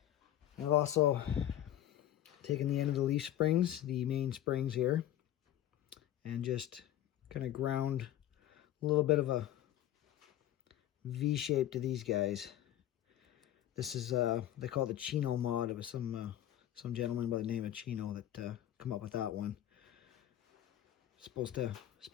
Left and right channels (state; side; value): quieter; right; 12.4 dB